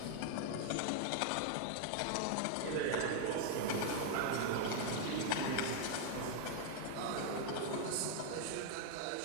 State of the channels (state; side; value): different; both; correlation 0.00